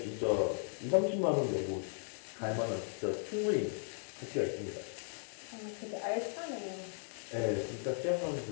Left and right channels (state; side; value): silent; right; 53 dB below the other